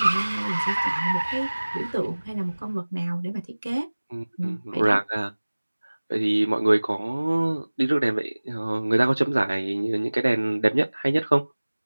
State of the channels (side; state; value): both; inverted; correlation -1.00